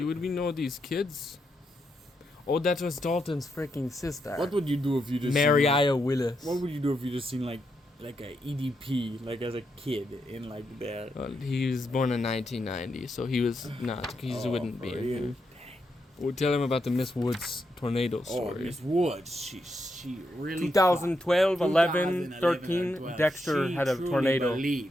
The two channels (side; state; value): both; normal; correlation 0.82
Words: we know these kids? Oh, that was Dalton's freaking sister. What would you do if you just Mariah Willis. What would you do if you just seen like a EDP like as a kid in like there? Well, he was born in 1990, so he was not. He wouldn't be for in real? here. We'll tell him about the Miss Woods tornado Oh, story. Miss Woods, she really 2012, 11, 2011, 13, 12. Dexter She had a truly tornado. believed